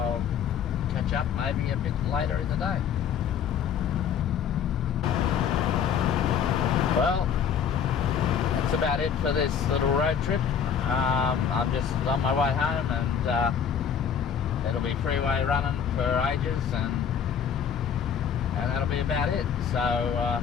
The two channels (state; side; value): quieter; right; 7.6 dB